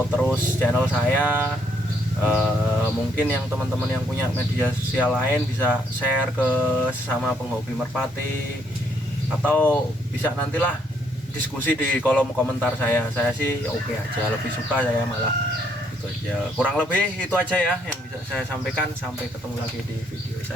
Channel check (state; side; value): normal; both; correlation 0.71